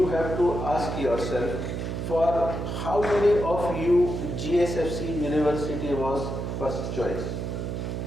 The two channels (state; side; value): noise; right; hum, 4 dB below the sound